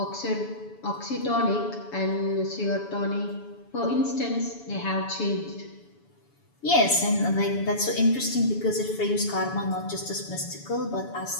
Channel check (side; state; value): right; late; 7.0 ms